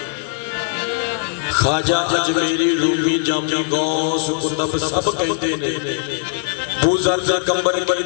ख्वाजा अजमेरी रूमी जामी गौस कुतुब सब कहते ने। बूज़र दे कंबल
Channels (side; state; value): right; silent; digital silence